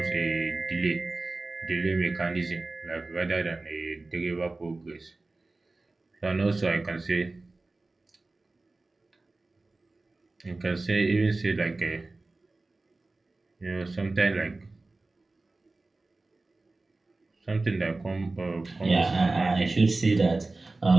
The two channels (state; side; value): quieter; left; 3.3 dB